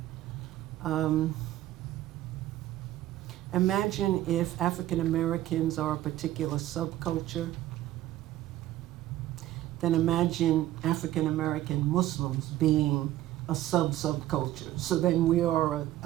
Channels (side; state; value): left; quieter; 14.4 dB